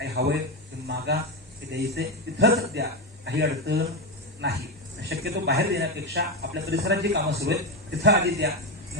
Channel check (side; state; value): both; normal; correlation 0.11